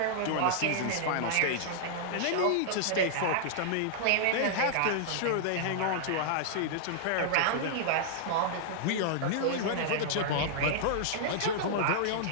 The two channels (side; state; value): both; different; correlation -0.01